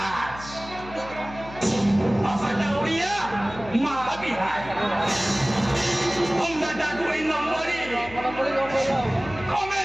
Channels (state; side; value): noise; left; hum, 15 dB below the sound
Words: बापाटा ओडिया माता बिहार हमरा 2 नंबरी